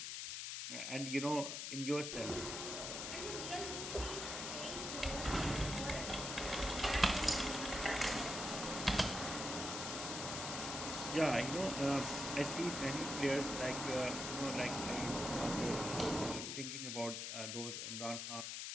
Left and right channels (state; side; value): noise; left; hiss, 4 dB below the sound